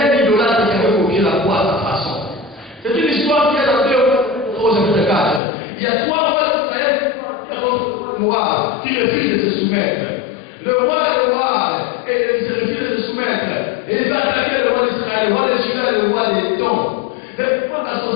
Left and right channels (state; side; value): drops out; right; at 5.4 s